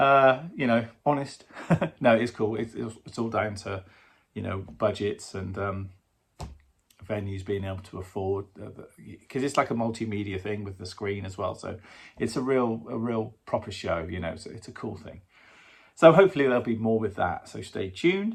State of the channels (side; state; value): both; identical; correlation 1.00